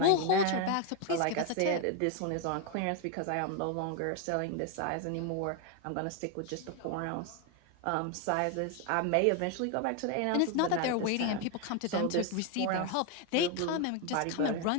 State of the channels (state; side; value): different; both; correlation 0.01